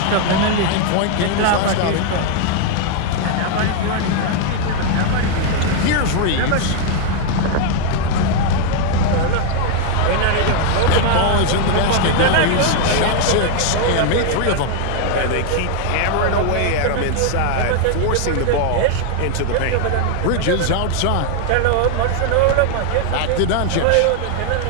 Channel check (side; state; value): both; different; correlation 0.00